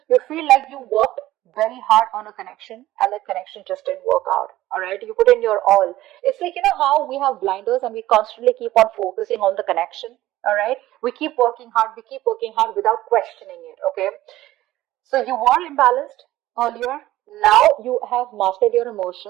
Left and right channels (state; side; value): quieter; left; 15.5 dB